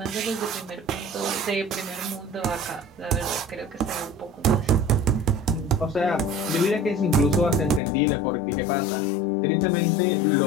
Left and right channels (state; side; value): drops out; right; at 7.8 s